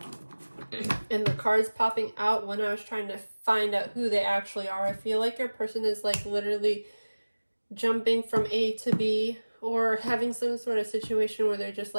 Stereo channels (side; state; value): both; inverted; correlation -1.00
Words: and the cards popping out when I was trying to find out who they actually are, I feel like your person is like literally jumping from A to B, or having some sort of situation where they're just